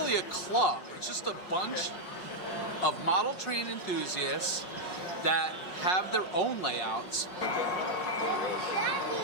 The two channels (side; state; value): right; late; 5.5 ms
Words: a club. It's just a bunch of model train enthusiasts that have their own layouts.